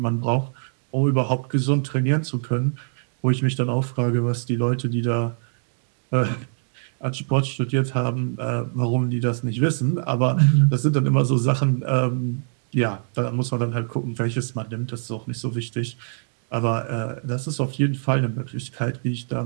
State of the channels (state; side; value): silent; left; digital silence